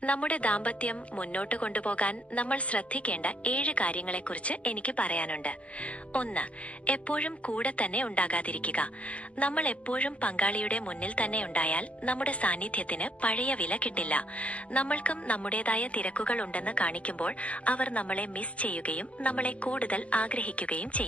നമ്മുടെ ദാമ്പത്യം മുന്നോട്ട് കൊണ്ടുപോകാൻ നമ്മൾ ശ്രദ്ധിക്കേണ്ട 7 കാര്യങ്ങളെക്കുറിച്ച് എനിക്ക് പറയാനുണ്ട്. 1. എപ്പോഴും കൂടെ തന്നെ ഉണ്ടാകാതിരിക്കുക. നമ്മൾ എപ്പോഴും പങ്കാളിയുടെ മുന്നിൽ തന്നെ ഉണ്ടായാൽ നമ്മുടെ സാന്നിധ്യത്തിന് പഴയ വില കിട്ടില്ല. നമ്മൾക്കും നമ്മുടേതായ തിരക്കുകൾ ഉണ്ടെന്ന് കാണിക്കുമ്പോൾ അവർ നമ്മളെ മിസ് ചെയ്യുകയും നമ്മളെ കൂടുതൽ ആഗ്രഹിക്കുകയും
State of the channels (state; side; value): late; right; 0.063 ms